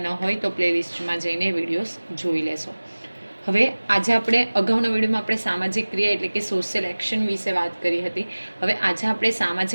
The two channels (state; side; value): inverted; both; correlation -1.00